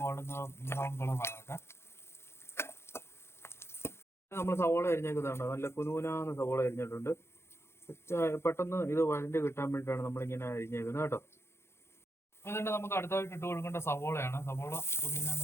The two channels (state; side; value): late; right; 0.12 ms